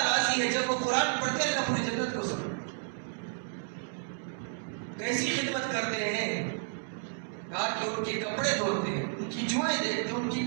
ہے. جب وہ قرآن پڑھتے ہیں اللہ پوری جنت کو سنا. کیسی خدمت کرتے ہیں؟ کہا کہ ان کے کپڑے دھوتے ہیں، ان کی جوئیں دیکھتے ہیں، ان کی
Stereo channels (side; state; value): left; silent; digital silence